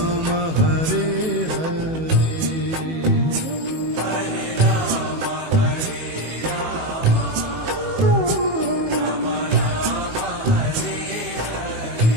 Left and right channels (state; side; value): late; left; 18 ms